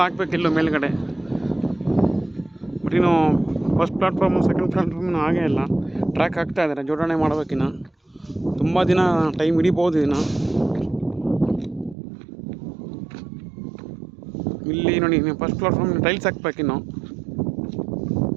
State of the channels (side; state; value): left; drops out; at 12.0 s